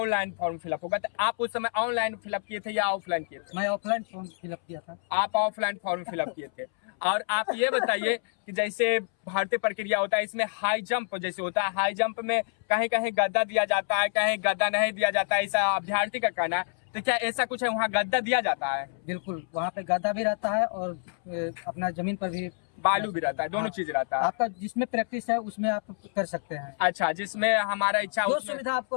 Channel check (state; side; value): silent; right; 60 dB below the other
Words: फॉर्म फिलअप होगा, तो आप उस समय ऑनलाइन फिलअप किए थे या ऑफलाइन किए थे? मैं ऑफलाइन फॉर्म फिलअप किया था। आप ऑफलाइन फॉर्म फिलअप किए थे। और आप ये बताइए कि जैसे भर्ती प्रक्रिया होता है इसमें हाई जंप जैसे होता है, हाई जंप में कहीं कहीं गद्दा दिया जाता है, कहीं गद्दा नहीं दिया जाता है, ऐसा अभ्यर्थी का कहना है। तो क्या ऐसा कुछ है वहाँ गद्दा दिया जाता है? बिल्कुल, वहाँ पे गद्दा भी रहता है और अपना जमीन पर भी बालू भी रहता है, दोनों चीज रहता है। आपका जिसमें प्रैक्टिस है उसमें आप कर सकते हैं। अच्छा, जिसमें हमारा इच्छा जो सुविधा